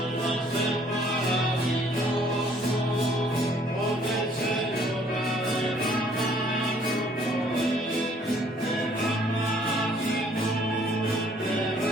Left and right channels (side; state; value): both; normal; correlation 0.61